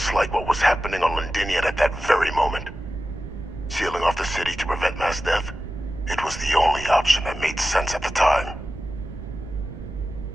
like what was happening on Londinian at that very moment. Sealing off the city to prevent mass death, it was the only option that made sense at the time.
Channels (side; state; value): right; noise; rumble, 13 dB below the sound